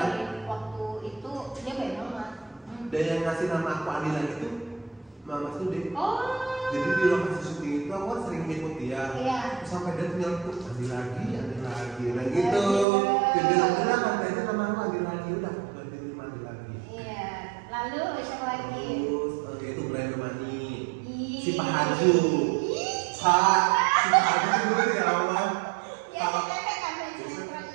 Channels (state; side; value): drops out; left; at 12.9 s